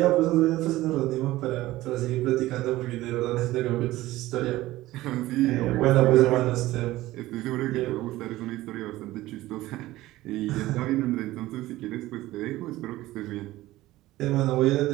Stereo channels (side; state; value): left; quieter; 16.9 dB